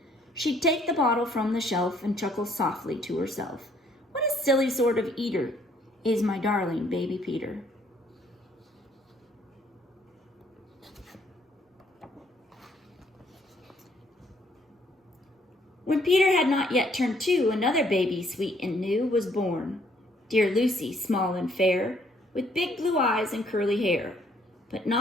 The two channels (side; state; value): both; normal; correlation 0.65